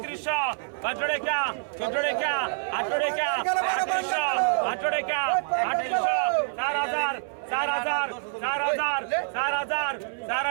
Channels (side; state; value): left; silent; 60 dB below the other